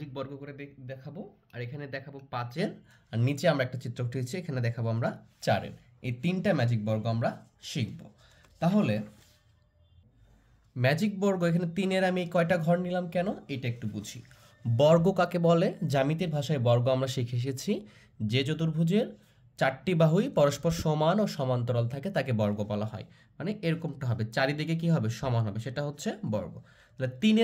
বর্গ করে দেখাবো, আর এখানে দেখাবো 5-এর, আর নিচে আমরা একটা চিত্র উঠিয়েছি, এখানে দেখাবো আমরা 4-এর। এই 3টা ম্যাজিক বর্গ আমরা শিখব। তাহলে ম্যাজিক বর্গ এখানে 3-এর আমি কয়টা ঘর নিলাম কেন, এটা একটু বুঝি। বর্গ কাকে বলে? জ্যামিতির ভাষায় বর্গ আমরা শিখে এসেছি যে চতুর্ভুজের 4টি বাহুই পরস্পর সমান ও সমান্তরাল থাকে তাকে বর্গ বলা হয়। মানে এরকমটা হবে, চারিদিকে কি হবে? সমান হবে, সেটা হচ্ছে বর্গ। তাহলে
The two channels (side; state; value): both; identical; correlation 1.00